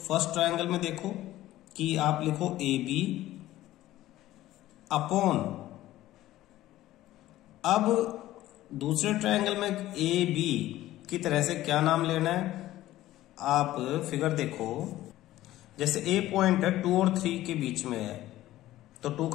ट्रायंगल में देखो कि आप लिखो ए बी अपॉन, अब दूसरे ट्रायंगल में ए बी की तरह से क्या नाम लेना है? आप फिगर देखो, जैसे ए पॉइंट है 2 और 3 के बीच में है, तो 2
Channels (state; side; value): quieter; right; 15.1 dB